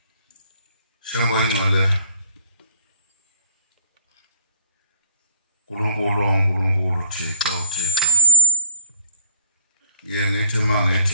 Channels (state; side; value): inverted; both; correlation -0.49